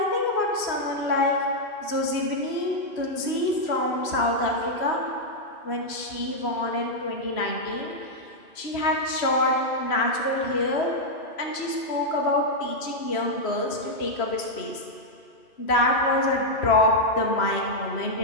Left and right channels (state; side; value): late; right; 3.0 ms